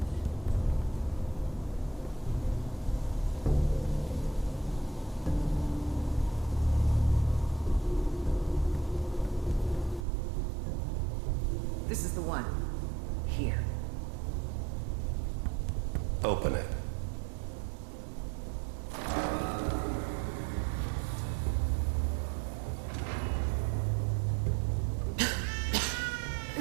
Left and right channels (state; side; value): drops out; left; at 10.1 s